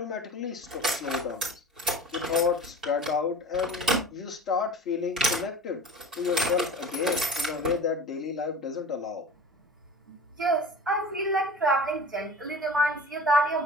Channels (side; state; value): both; normal; correlation 0.37